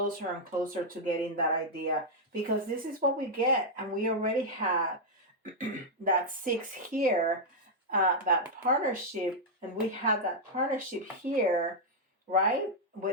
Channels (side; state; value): both; normal; correlation -0.03